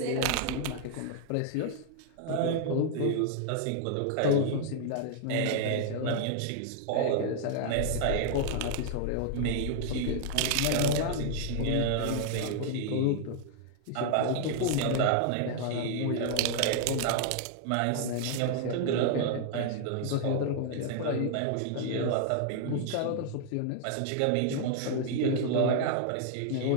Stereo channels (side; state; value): both; different; correlation -0.01